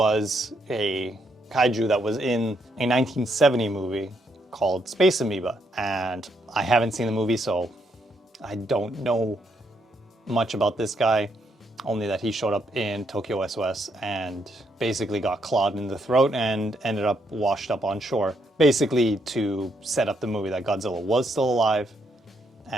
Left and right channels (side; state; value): both; normal; correlation 0.76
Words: a kaiju that was in a 1970 movie called Space Amoeba, and I haven't seen the movie, so I don't know much about this guy, only that he showed up in Tokyo SOS and basically got clawed in the throat and ended up washed up on shore, basically to set up the movie that Godzilla was still alive